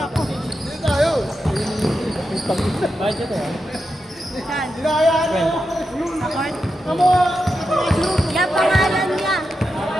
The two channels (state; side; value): normal; both; correlation 0.88